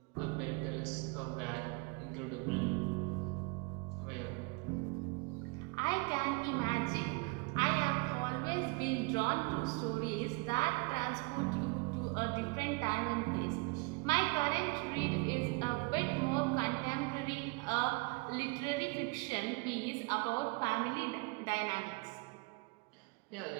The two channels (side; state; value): left; quieter; 28.4 dB